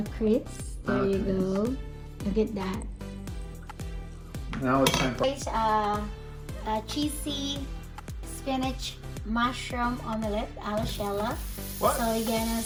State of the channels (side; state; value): both; identical; correlation 1.00